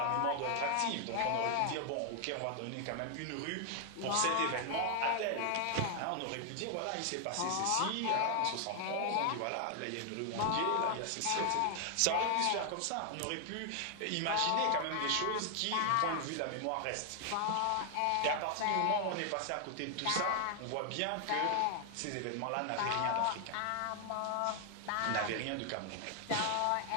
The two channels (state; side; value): different; both; correlation 0.00